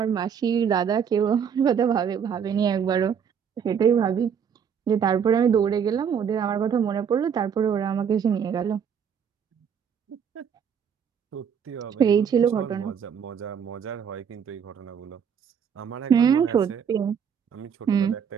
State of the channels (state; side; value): quieter; left; 7.5 dB